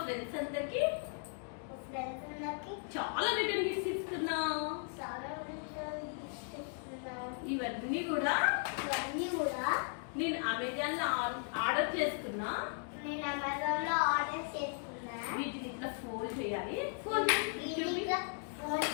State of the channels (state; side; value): silent; right; 53 dB below the other